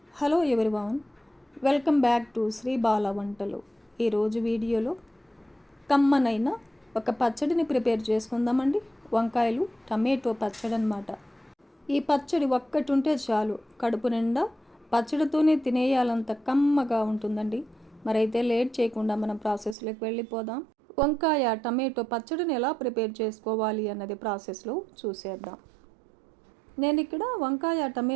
Hello everyone, welcome back to Sri Bala Vantalu. ఈరోజు వీడియోలో కమ్మనైన ఒక పచ్చడిని ప్రిపేర్ చేసుకుందామండి. వంకాయలు టమాటో పచ్చడి అన్నమాట. ఈ పచ్చడి ఒక్కటి ఉంటే చాలు, కడుపు నిండా పచ్చడితోనే తినేయాలంత కమ్మగా ఉంటుందండి. మరైతే లేట్ చేయకుండా మనం ప్రాసెస్లోకి వెళ్ళిపోదాం. వంకాయ టమాటో పచ్చడిని ఎలా ప్రిపేర్ చేసుకోవాలి అన్నది ప్రాసెస్లో చూసేద్దాం. నేను ఇక్కడ వంకాయ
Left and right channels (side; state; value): left; drops out; at 19.8 s